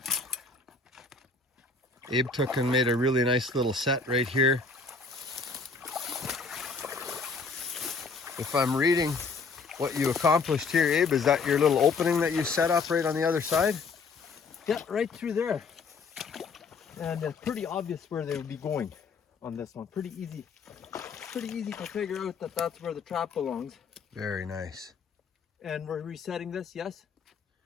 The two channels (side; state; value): right; quieter; 4.5 dB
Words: Abe took and made a really nice little set right here. If I'm reading what you accomplished here, Abe, is that your little opening that you set up right on the other side? Yeah, right through there. And it's pretty obvious where they would be going on this one. Pretty easy to figure out that that's where the trap belongs. Very nice. And we're resetting this, yes?